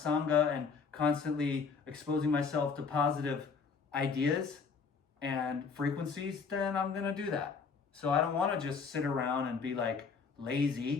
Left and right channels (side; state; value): right; quieter; 5.4 dB